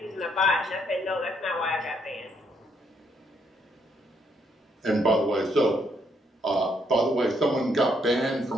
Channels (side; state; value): both; normal; correlation 0.73